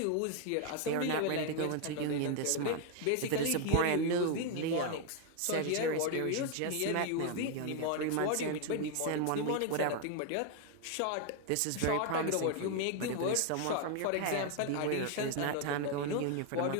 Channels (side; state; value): both; different; correlation 0.00